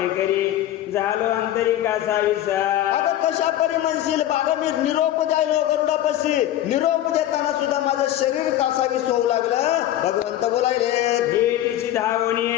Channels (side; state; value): right; quieter; 12.9 dB